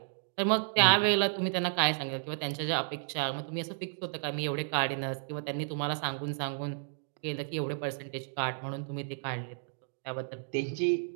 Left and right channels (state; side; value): silent; left; digital silence